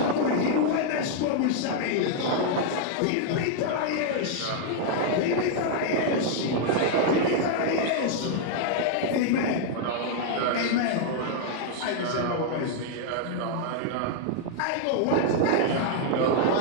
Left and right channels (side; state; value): both; different; correlation -0.01